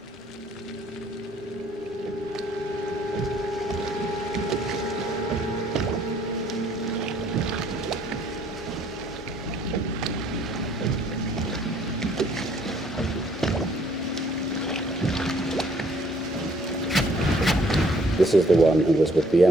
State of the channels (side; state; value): both; normal; correlation 0.62